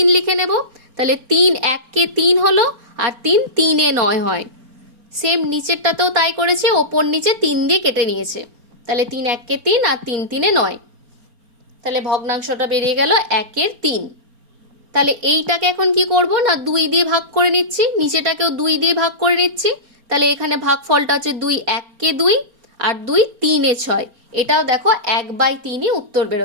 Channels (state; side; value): late; left; 4.2 ms